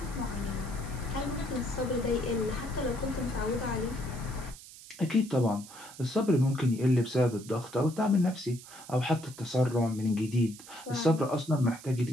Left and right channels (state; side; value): noise; right; hiss, 17 dB below the sound